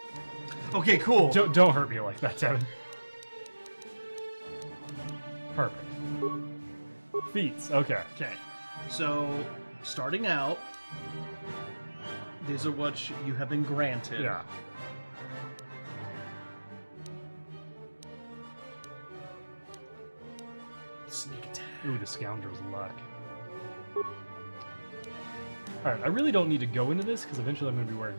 Okay, cool. Don't hurt me like that, Devin. Perfect. Feats. Okay. Okay, so starting out, these are what you have been granted. Yeah. Sneak attack. Ooh, the scoundrel's luck. Alright, I really don't need to go into this because eventually I'm going to be wearing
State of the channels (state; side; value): inverted; both; correlation -1.00